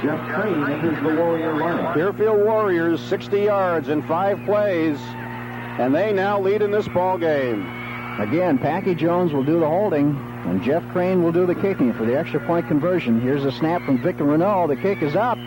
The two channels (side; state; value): both; identical; correlation 1.00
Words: Jeff Crane, enters the Warrior lineup. Deerfield Warriors 60 yards in 5 plays, and they now lead in this ball game. Again, Packy Jones will do the holding, and Jeff Crane will do the kicking for the extra point conversion. Here's a snap from Victor Renault. The kick is up.